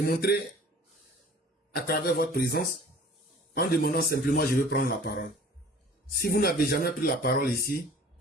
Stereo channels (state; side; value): normal; both; correlation 0.47